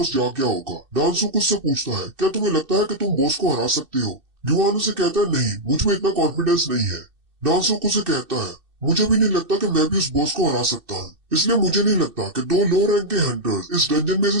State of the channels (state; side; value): late; left; 2.6 ms